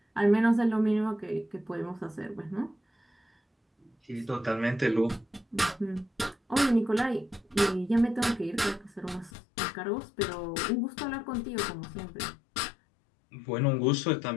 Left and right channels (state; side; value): drops out; right; at 9.3 s